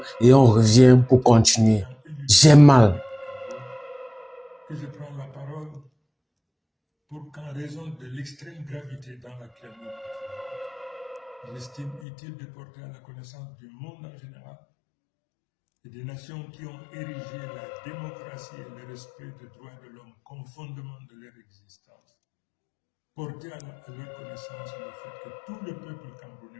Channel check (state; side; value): drops out; right; at 12.0 s